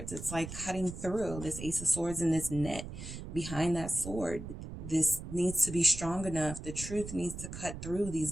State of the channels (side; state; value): right; noise; rumble, 9 dB below the sound